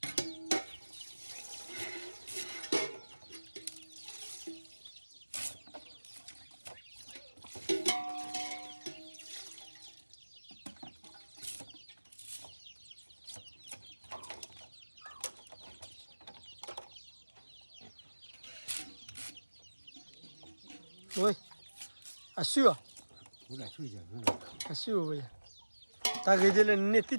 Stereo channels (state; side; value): inverted; both; correlation -1.00